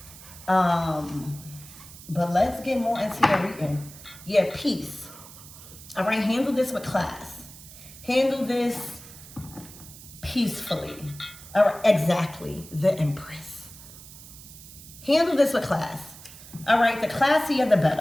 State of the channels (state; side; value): noise; right; hiss, 17 dB below the sound